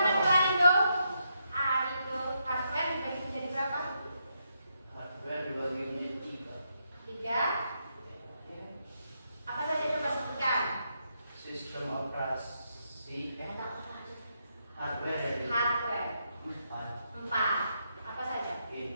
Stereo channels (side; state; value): both; inverted; correlation -0.80